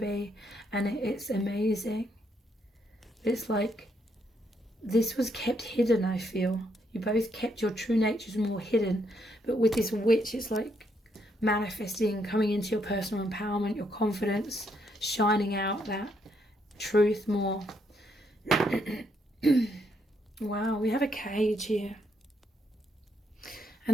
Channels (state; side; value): normal; both; correlation 0.75